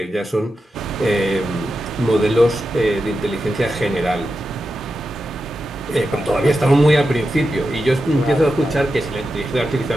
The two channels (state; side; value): normal; both; correlation 0.90